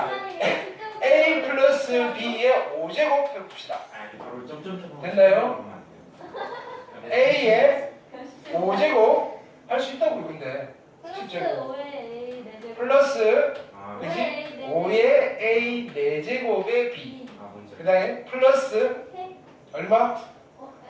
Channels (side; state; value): both; identical; correlation 1.00